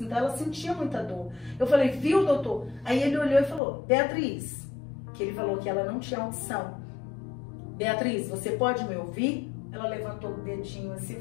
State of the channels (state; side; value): drops out; right; at 3.6 s